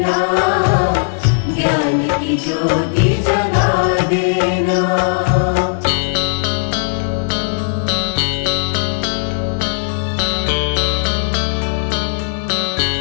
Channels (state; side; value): silent; right; 57 dB below the other